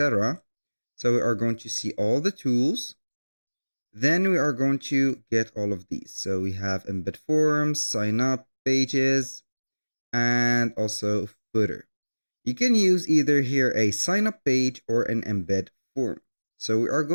So we are going to see all the tools. Then we are going to get all of these. So we have embed forms, sign up pages, and also footer. You can use either here a sign up page or an embed form. So we are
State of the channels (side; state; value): both; inverted; correlation -1.00